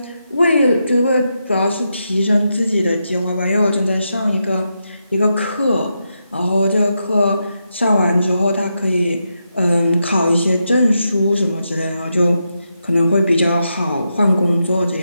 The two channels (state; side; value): inverted; both; correlation -0.85